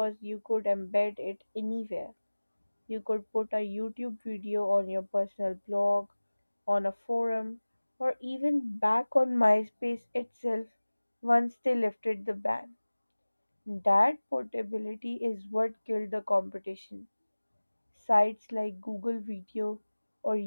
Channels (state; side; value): inverted; both; correlation -1.00